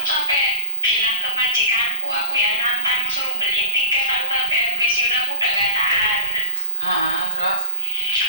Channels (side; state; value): both; inverted; correlation -0.50